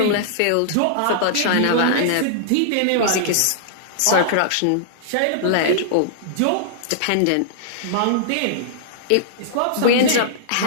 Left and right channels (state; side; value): different; both; correlation -0.02